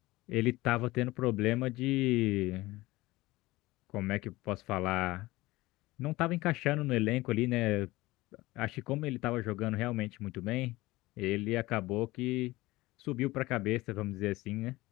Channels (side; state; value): right; quieter; 19.5 dB